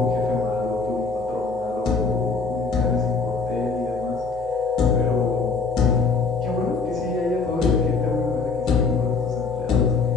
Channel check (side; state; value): right; quieter; 4.5 dB